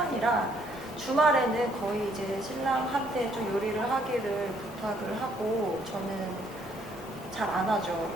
주말에는 거의 이제 신랑한테 좀 요리를 하기를 부탁을 하고, 저는 잘 안 하죠.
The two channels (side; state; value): both; normal; correlation 0.67